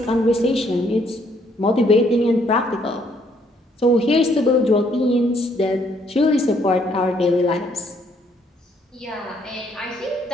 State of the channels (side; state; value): both; normal; correlation 0.68